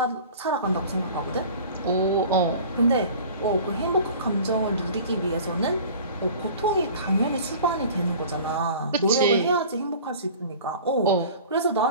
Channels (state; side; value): inverted; both; correlation -0.43